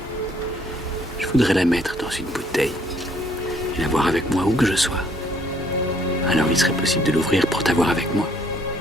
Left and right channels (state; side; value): normal; both; correlation 0.65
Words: Je voudrais la mettre dans une bouteille et la voir avec moi où que je sois. Alors il serait possible de l'ouvrir pour t'avoir avec moi.